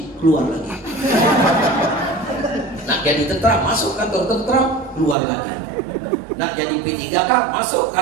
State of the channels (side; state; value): left; drops out; at 5.2 s